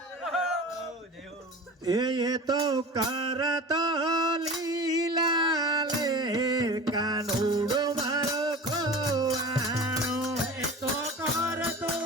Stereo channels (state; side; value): normal; both; correlation 0.35